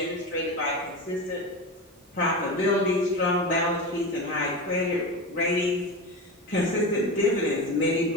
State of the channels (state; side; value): normal; both; correlation 0.24